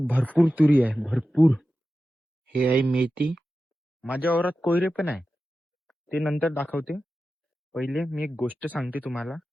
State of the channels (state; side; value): normal; both; correlation 0.93